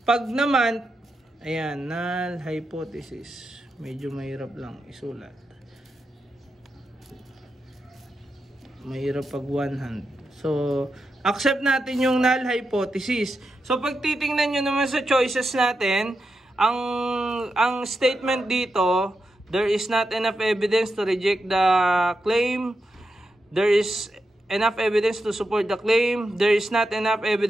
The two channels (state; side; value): normal; both; correlation 0.87